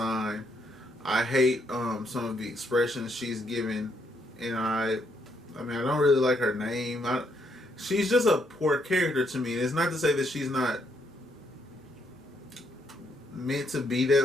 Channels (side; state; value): both; normal; correlation 0.74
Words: I hate some of the expressions she's given. And I don't really like her name. She's just a poor character to me. It's not to say that she's not meant to be